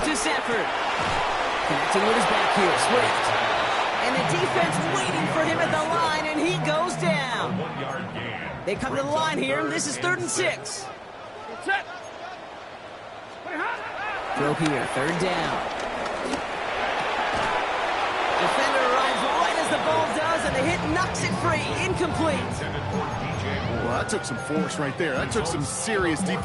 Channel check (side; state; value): both; identical; correlation 1.00